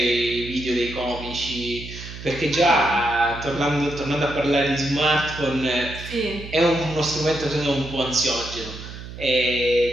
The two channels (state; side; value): noise; right; hum, 12 dB below the sound